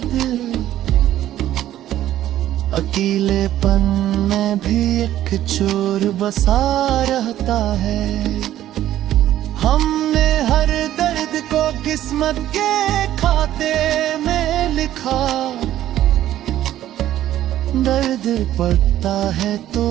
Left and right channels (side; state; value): left; quieter; 12.8 dB